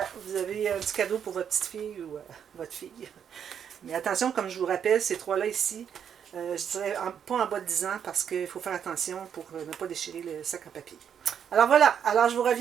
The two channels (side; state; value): left; quieter; 8.2 dB